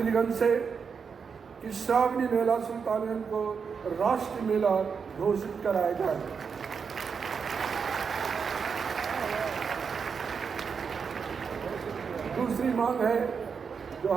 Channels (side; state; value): left; quieter; 6.0 dB